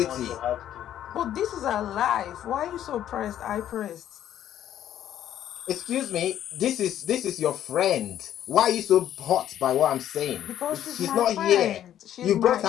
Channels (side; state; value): right; quieter; 11.2 dB